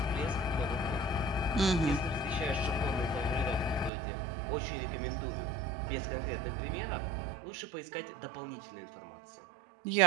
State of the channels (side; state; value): left; drops out; at 3.9 s